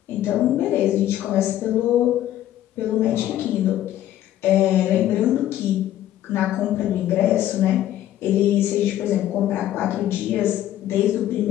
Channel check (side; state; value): right; quieter; 12.7 dB